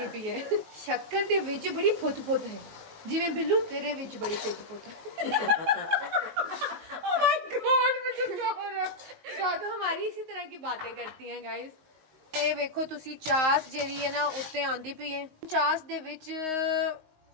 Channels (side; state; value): left; late; 19 ms